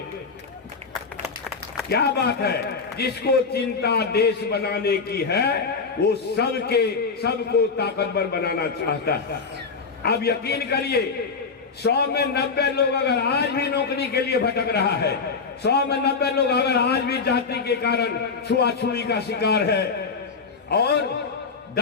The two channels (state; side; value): quieter; right; 4.9 dB